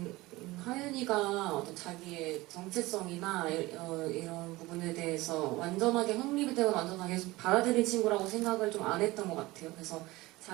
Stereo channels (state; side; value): quieter; left; 20.0 dB